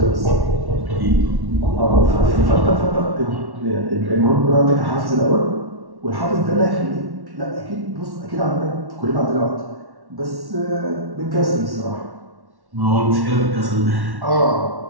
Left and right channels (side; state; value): left; late; 1.1 ms